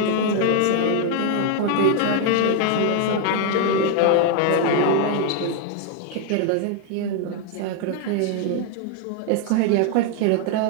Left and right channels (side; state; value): both; different; correlation 0.01